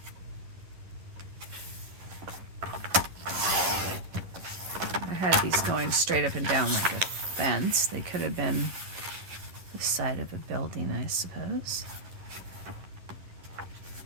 I had these going straight up and down like a fence. They could have been the side of a building, I suppose.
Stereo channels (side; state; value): left; late; 11 ms